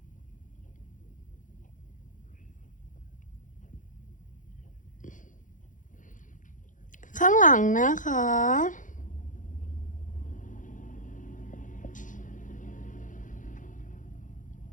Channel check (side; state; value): right; late; 0.37 ms